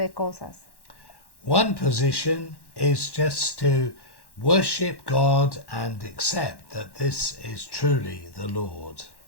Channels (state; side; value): late; right; 1.1 ms